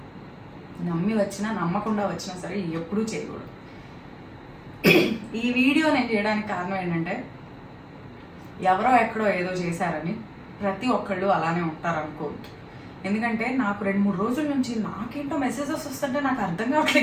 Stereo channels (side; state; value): both; identical; correlation 1.00